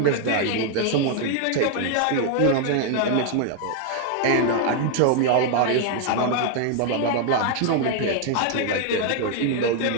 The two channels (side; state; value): both; different; correlation 0.00